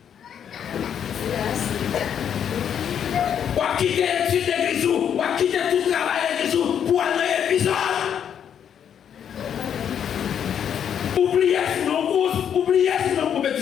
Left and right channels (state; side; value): quieter; right; 8.7 dB